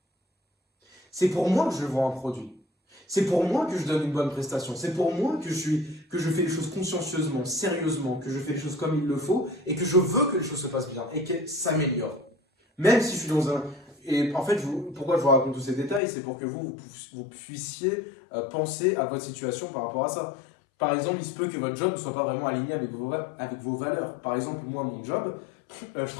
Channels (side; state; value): right; drops out; at 16.0 s